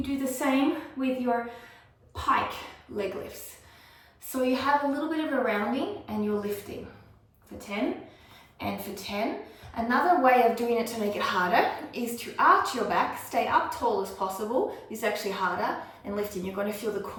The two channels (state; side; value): identical; both; correlation 1.00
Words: do the same with your pike leg lifts. So you have a little bit of a rounding and you're lifting for 10 and for 10. Another way of doing it to make it harder is to arch your back, stay up tall as possible. This is actually harder, and lifting. You're going to feel the